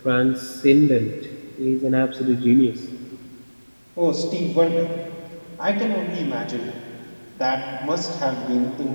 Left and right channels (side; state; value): both; inverted; correlation -1.00